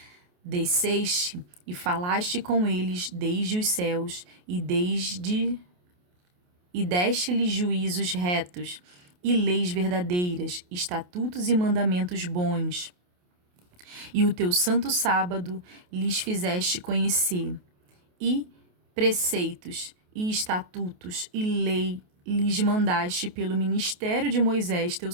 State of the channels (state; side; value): late; left; 28 ms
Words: desceste e falaste com eles desde os céus, e deste-lhes juízos retos, e leis verdadeiras, estatutos e mandamentos bons. E o teu santo sábado lhes fizeste conhecer, e preceitos, e estatutos, e lei lhes mandaste pelo ministério de Moisés teu